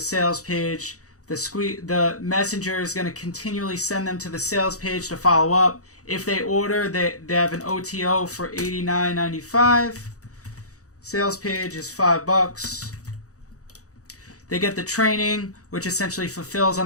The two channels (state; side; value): late; right; 0.66 ms